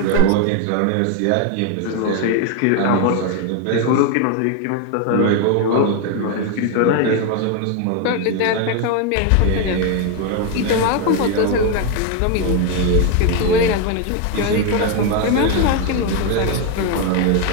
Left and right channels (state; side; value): different; both; correlation 0.01